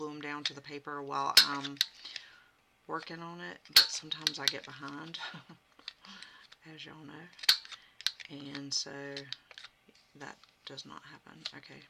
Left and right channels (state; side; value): identical; both; correlation 1.00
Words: them down to the paper while I'm working on it. But sometimes I get behind, as y'all know, and so that does not happen. Okay,